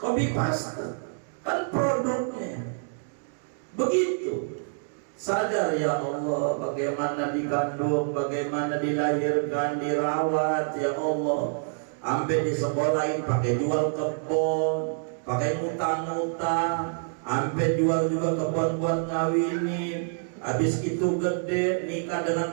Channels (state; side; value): silent; left; digital silence